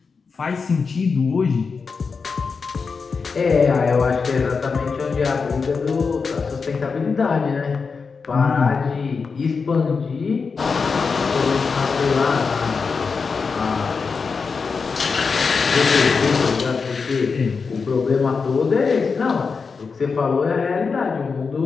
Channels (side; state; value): right; quieter; 5.1 dB